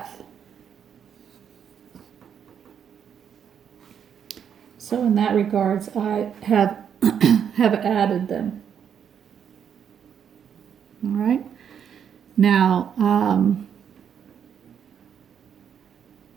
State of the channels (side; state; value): left; quieter; 8.2 dB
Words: So in that regards, I have added them. All right. Now,